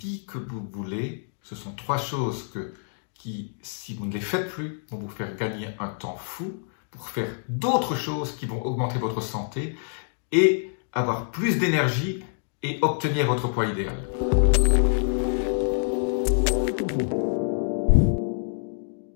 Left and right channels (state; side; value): silent; right; digital silence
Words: que vous voulez. Ce sont trois choses qui, si vous ne les faites plus, vont vous faire gagner un temps fou pour faire d'autres choses qui vont augmenter votre santé et avoir plus d'énergie et obtenir votre poids idéal.